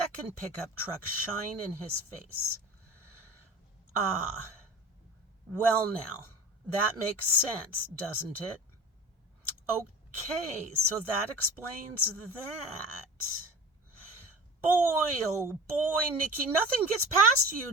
pickup truck shine in his face. Ah, well now, that makes sense, doesn't it? Okay, so that explains that. Boy, oh boy, Nicky, nothing gets past you,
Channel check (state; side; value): normal; both; correlation 0.38